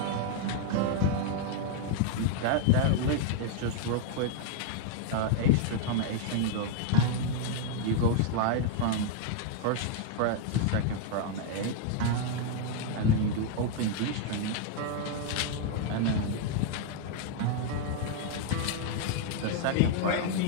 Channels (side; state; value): both; different; correlation 0.00